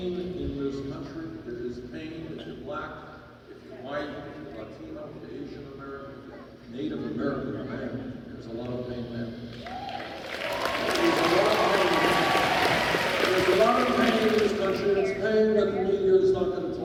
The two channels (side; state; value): both; identical; correlation 1.00